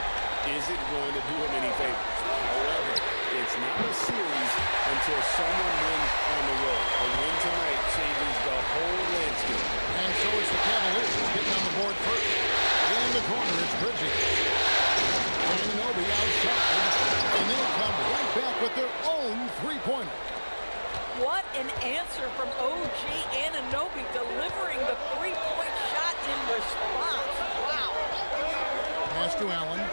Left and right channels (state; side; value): inverted; both; correlation -1.00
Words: isn't going to do them any favors. However, it's not a series until someone wins on the road. A win tonight changes the whole landscape. And so it's the Cavaliers getting on the board first. In the corner, it's Bridges. Anunoby outside. And they'll come right back with their own three-pointer. What an answer from OG Anunoby, delivering the three-point shot in response. Wow. Pass to Allen.